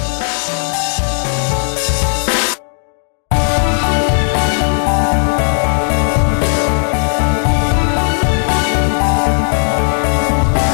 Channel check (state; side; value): silent; right; digital silence